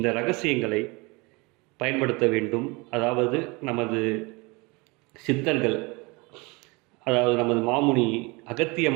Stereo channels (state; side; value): quieter; left; 26.6 dB